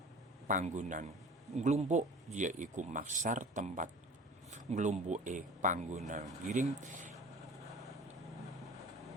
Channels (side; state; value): both; normal; correlation 0.41